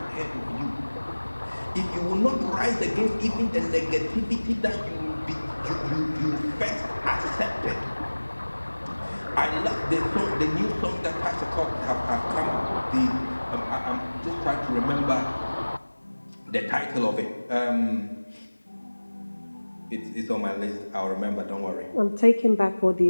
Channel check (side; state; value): both; inverted; correlation -1.00